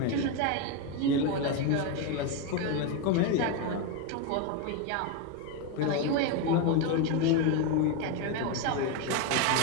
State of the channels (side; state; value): both; different; correlation 0.03